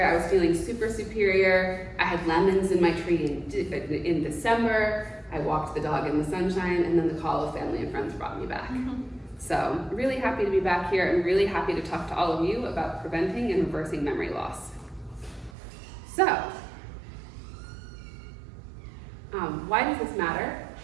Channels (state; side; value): drops out; left; at 15.5 s